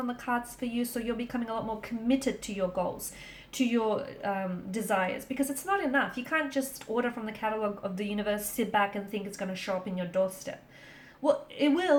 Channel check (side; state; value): both; identical; correlation 1.00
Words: the cards for you, so you're becoming a lot more committed to your goals, to your desires, because it's not enough. You can't just order from the catalog of the universe, sit back and think it's going to show up in your doorstep. Well, it